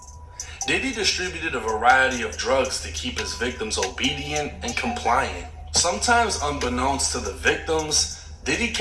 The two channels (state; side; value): identical; both; correlation 1.00